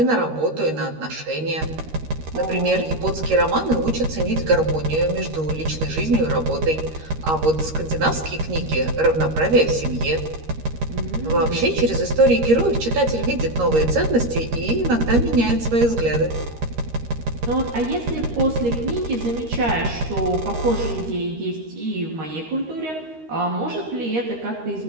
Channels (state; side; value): late; left; 13 ms